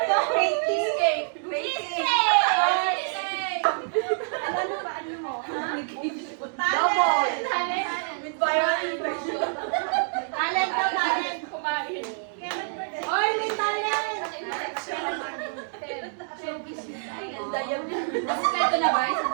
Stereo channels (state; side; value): silent; left; digital silence